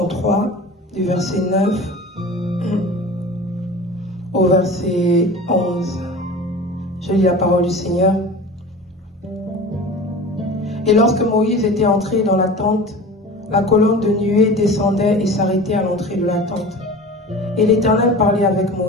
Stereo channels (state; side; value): normal; both; correlation 0.36